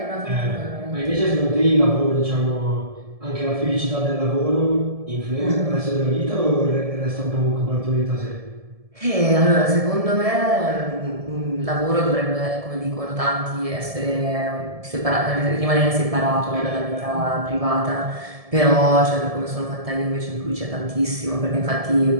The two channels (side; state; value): left; late; 1.7 ms